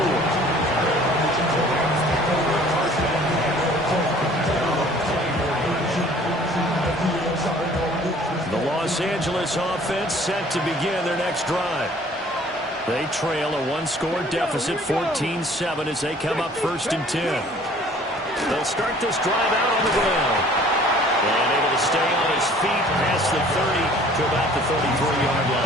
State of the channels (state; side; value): normal; both; correlation 0.53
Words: The Los Angeles offense set to begin their next drive. They trail a 1-score deficit, 14-7, as they come up 1st and 10. They'll start this drive out on the ground. And able to stay on his feet past the 30 to about the 33-yard